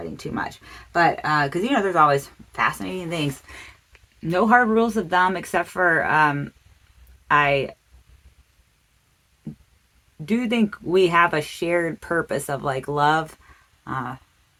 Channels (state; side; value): identical; both; correlation 1.00